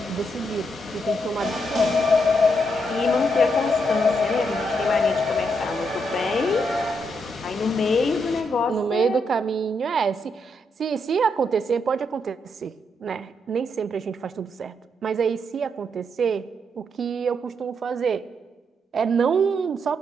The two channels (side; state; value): both; normal; correlation 0.79